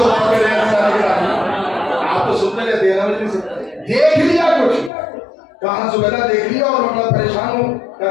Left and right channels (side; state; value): right; drops out; at 4.9 s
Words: आप तो सुनते रहते हैं ना, देख लिया कुछ। कहा जुबैदा देख लिया और मैं परेशान हूँ।